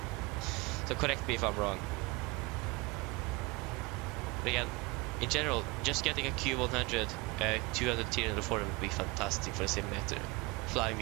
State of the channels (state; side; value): quieter; left; 25.0 dB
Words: So correct me if I'm wrong. But again, in general, just getting a Q100, 200 tier in the forum would be fantastic for a simulator. Flying